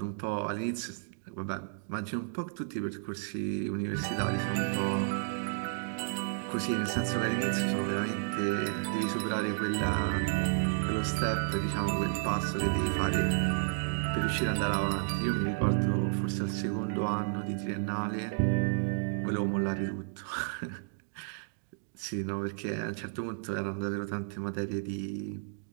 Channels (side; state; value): left; silent; digital silence